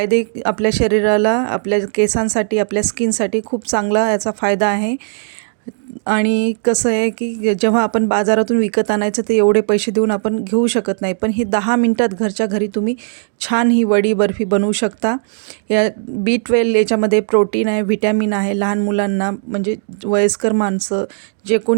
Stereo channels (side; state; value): left; silent; digital silence